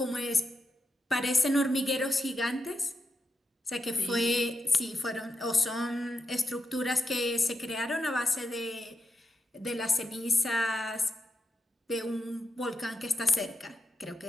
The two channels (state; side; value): normal; both; correlation 0.86